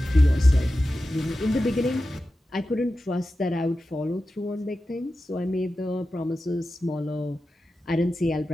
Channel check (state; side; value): normal; both; correlation 0.93